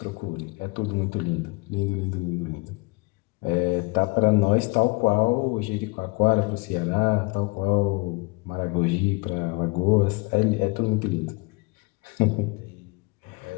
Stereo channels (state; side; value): quieter; right; 27.4 dB